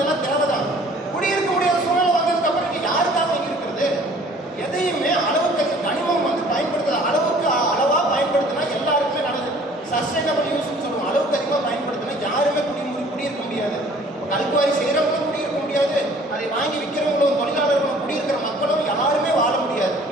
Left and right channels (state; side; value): normal; both; correlation 0.53